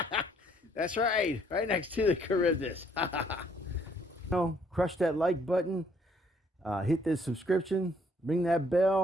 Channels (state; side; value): normal; both; correlation 0.65